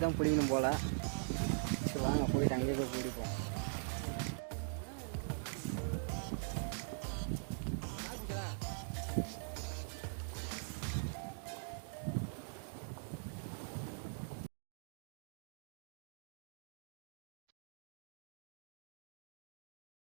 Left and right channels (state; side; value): silent; left; digital silence